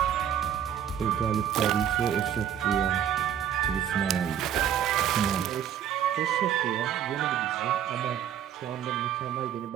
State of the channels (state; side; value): quieter; left; 9.6 dB